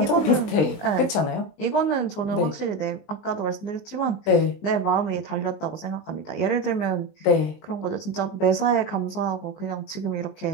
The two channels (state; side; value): late; right; 20 ms